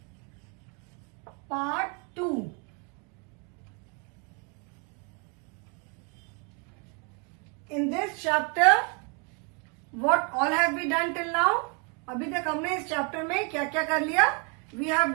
part 2. In this chapter, what all have we done till now? अभी तक हमने इस chapter में क्या क्या कर लिया? We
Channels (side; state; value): left; quieter; 35.2 dB